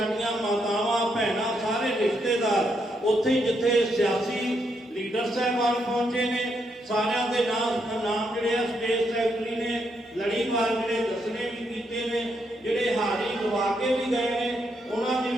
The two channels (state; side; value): normal; both; correlation 0.78